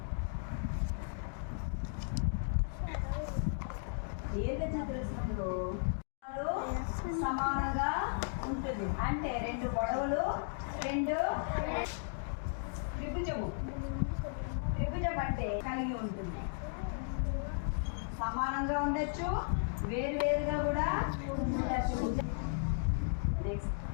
దీర్ఘ చతురస్రంలో సమానంగా ఉంటుంది అంటే 2 పొడవులు 2 త్రిభుజం అంటే కలిగి ఉంటుంది. సమానంగా ఉండొచ్చు, వేరువేరుగా కూడా ఉండొచ్చు. నెక్స్ట్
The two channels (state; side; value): silent; right; digital silence